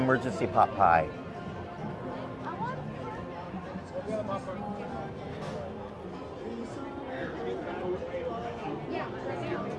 emergency pot pie.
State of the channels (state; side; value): identical; both; correlation 1.00